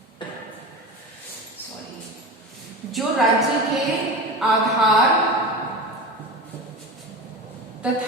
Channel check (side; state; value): both; normal; correlation 0.28